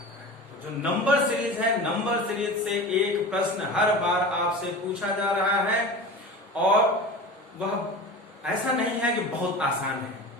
है। तो जो नंबर सीरीज है, नंबर सीरीज से एक प्रश्न हर बार आपसे पूछा जा रहा है और वह ऐसा नहीं है कि बहुत आसान है,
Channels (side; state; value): both; normal; correlation 0.32